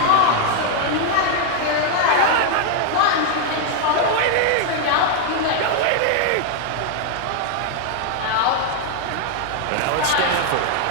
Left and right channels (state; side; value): different; both; correlation 0.00